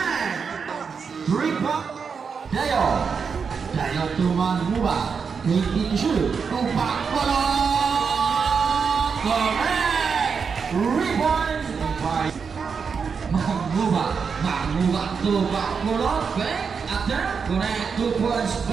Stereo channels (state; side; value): quieter; left; 5.8 dB